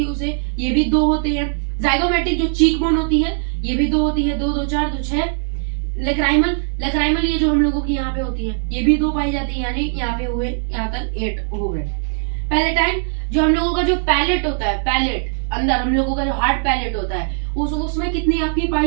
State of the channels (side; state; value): left; silent; 66 dB below the other